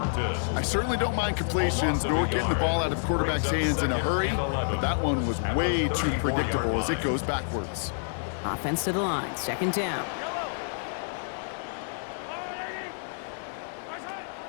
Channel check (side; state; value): right; silent; digital silence